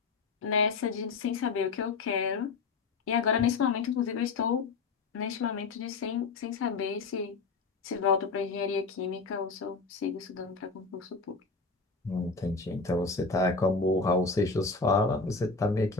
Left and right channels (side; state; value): right; quieter; 4.3 dB